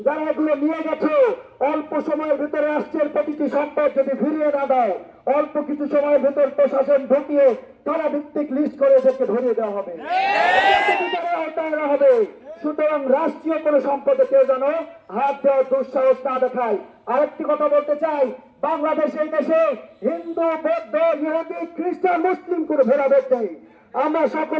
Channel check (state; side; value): identical; both; correlation 1.00